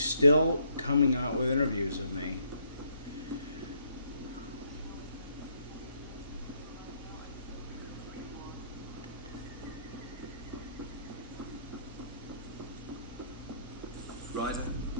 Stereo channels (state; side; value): inverted; both; correlation -0.70